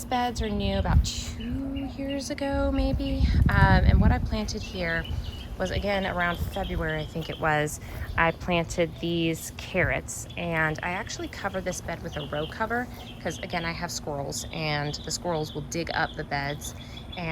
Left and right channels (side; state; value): both; identical; correlation 1.00